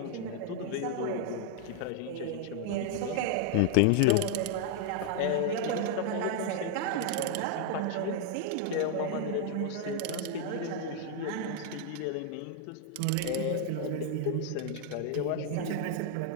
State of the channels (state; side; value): different; both; correlation 0.00